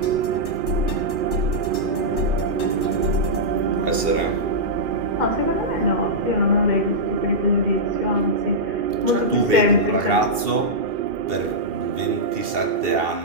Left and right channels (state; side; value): late; left; 2.7 ms